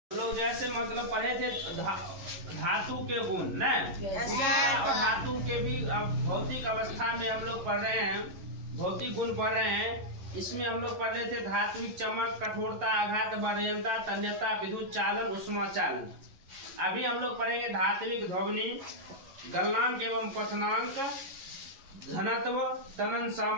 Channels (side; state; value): left; late; 11 ms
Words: लोग जैसे मतलब पढ़े थे धातु के गुण न और धातु के भी भौतिक अवस्था में हम लोग पढ़ रहे हैं, भौतिक गुण पढ़ रहे हैं। इसमें हम लोग पढ़ रहे थे धात्विक चमक, कठोरता, आघात, बलयंता, तन्यता, विद्युत चालन, उष्मा चालन। अभी हम लोग पढ़ेंगे धात्विक ध्वनि, गलनांक एवं क्वथनांक, घनत्व, तनन